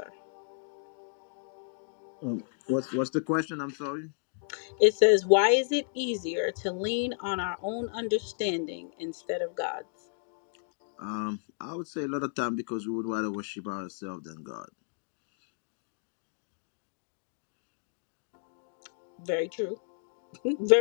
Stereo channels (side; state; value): right; silent; digital silence